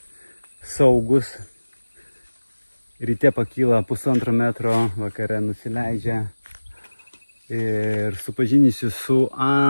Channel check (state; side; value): inverted; both; correlation -1.00